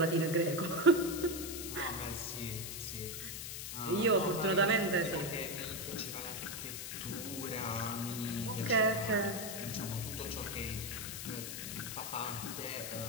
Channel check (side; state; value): left; noise; hiss, 6 dB below the sound